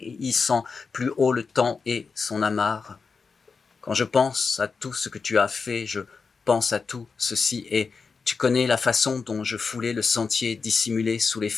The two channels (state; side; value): quieter; right; 5.0 dB